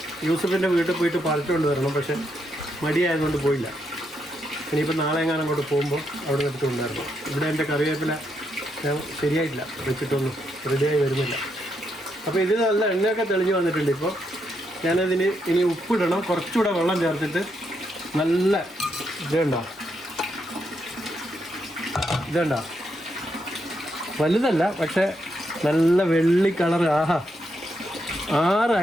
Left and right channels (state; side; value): normal; both; correlation 0.79